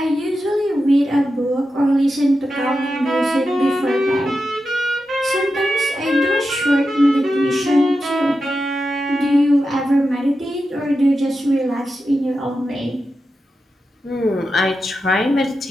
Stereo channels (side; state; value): both; normal; correlation 0.90